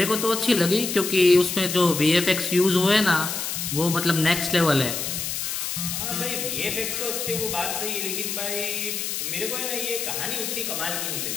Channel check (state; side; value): noise; left; hiss, 3 dB below the sound